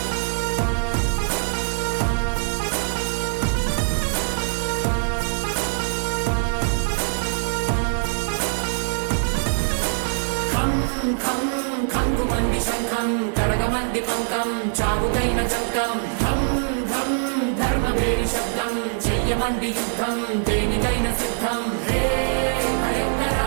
ఖంగుమంది శంఖం కడగమంది పంకం చావుకైన చంకం ధం ధం ధర్మవేడి శబ్దం చెయ్యమంది యుద్ధం దేనికైన సిద్ధం హే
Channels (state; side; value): silent; left; 63 dB below the other